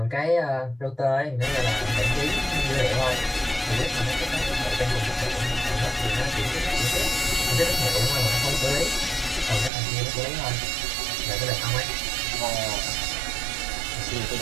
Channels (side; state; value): left; drops out; at 9.7 s